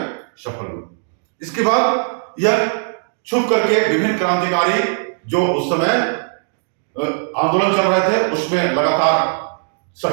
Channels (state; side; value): silent; left; digital silence